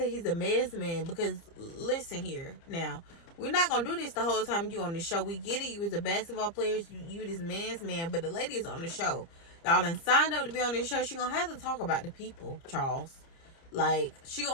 he's a man's man, because listen here now, we're not gonna do this the whole time you on the show. We get it, you was a basketball player, you this man's man, but the lady is on the show. Y'all done signed up to be on this show. She gonna have to talk about the people, Charles. Like, she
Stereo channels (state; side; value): late; right; 30 ms